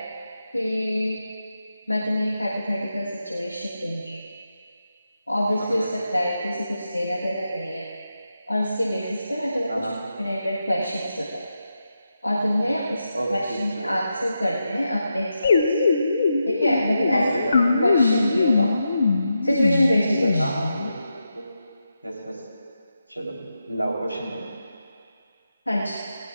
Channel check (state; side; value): inverted; both; correlation -0.87